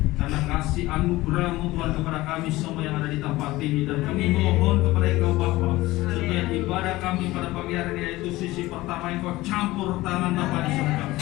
karena kasih anugerah-Mu Tuhan kepada kami semua yang ada di tempat ini. Dan kami mohon kepada Engkau Bapa, supaya ibadah kami pada pagi hari ini, yaitu sisi pertama, Engkau campur tangan Bapa di surga.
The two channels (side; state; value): right; quieter; 18.5 dB